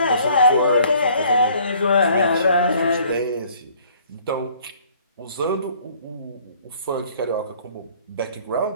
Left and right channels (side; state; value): both; inverted; correlation -0.57